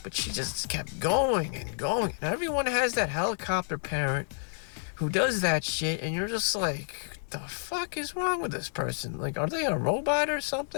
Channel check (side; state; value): right; silent; digital silence